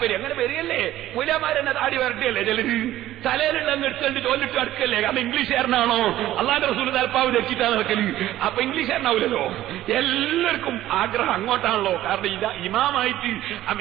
അങ്ങനെ വരികയല്ലേ? മൂലമാരെന്നെ താടി വരട്ടിയല്ലേ ചിലര്? തലയിലുള്ള എടുത്തുകൊണ്ട് തോന്നിട്ട് അടുക്കല്ലേ? കാരണം ഇംഗ്ലീഷുകാരനാണോ? അള്ളാന്റെ റസൂൽ തലപ്പാവ് ധരിച്ചിട്ടാണ് നടക്കല്. അപ്പൊ ഇംഗ്ലീഷുകാരനാവില്ലല്ലോ. എല്ലാവർക്കും ആഗ്രഹം അങ്ങോട്ടാണല്ലോ. കാരണം ഇമാമായിട്ട്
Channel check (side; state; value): left; quieter; 14.1 dB